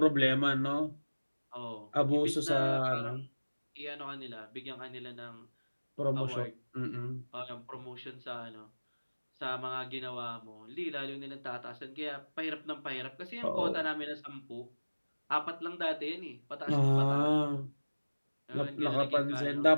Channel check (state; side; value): inverted; both; correlation -1.00